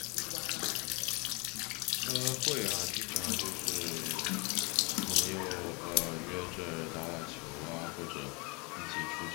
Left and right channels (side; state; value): right; quieter; 30.0 dB